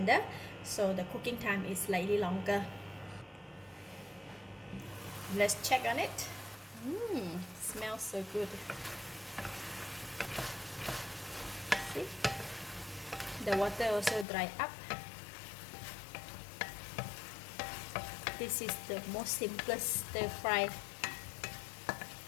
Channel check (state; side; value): drops out; right; at 14.2 s